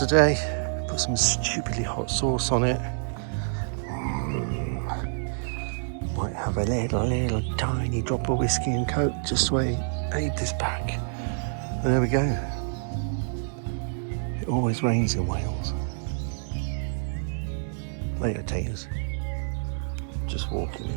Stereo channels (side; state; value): left; silent; digital silence